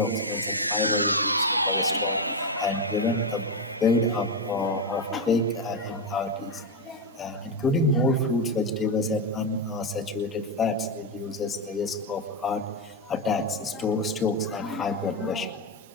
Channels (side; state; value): both; normal; correlation 0.08